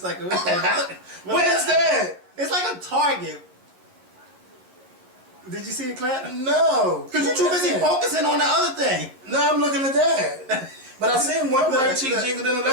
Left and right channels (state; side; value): late; left; 11 ms